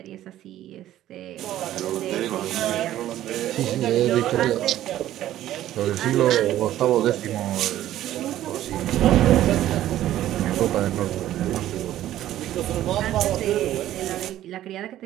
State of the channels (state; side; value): quieter; left; 13.1 dB